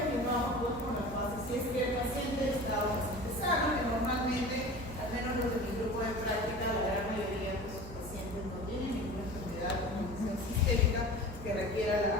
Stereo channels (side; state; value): right; noise; hum, 13 dB below the sound